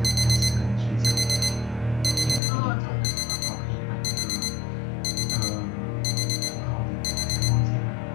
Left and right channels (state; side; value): drops out; right; at 2.4 s